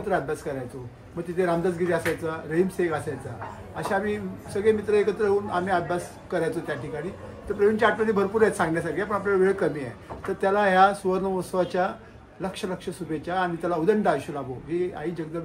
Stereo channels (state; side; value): identical; both; correlation 1.00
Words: अभ्यास करायचो. मग तिथे रामदासगिरी असायचा, रहीम शेख असायचा. अशा आम्ही सगळे मित्र एकत्र येऊन आम्ही अभ्यास करायचो त्या ठिकाणी. तर प्रवीणच्या आठवणी भरपूर आहेत सांगण्यासारख्या, पण आपल्याला वेळ कमी आहे. तर त्याला ह्या सुवर्ण महोत्सवाच्या लक्ष लक्ष शुभेच्छा आणि त्याला उदंड आयुष्य लाभो ही आई